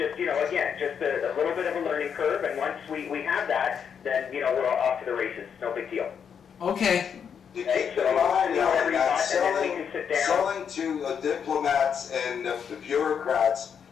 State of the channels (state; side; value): quieter; right; 7.4 dB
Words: you know, again, just a little bit of a learning curve, and once we have that, then, you know, we're off to the races. No big deal. Okay. You keep in mind that selling to diplomats and bureaucrats